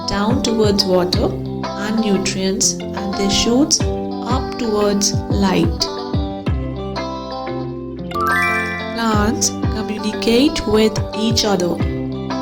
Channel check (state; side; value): identical; both; correlation 1.00